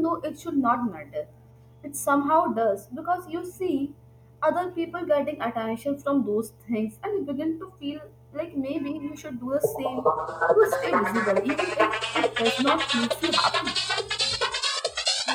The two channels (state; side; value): identical; both; correlation 1.00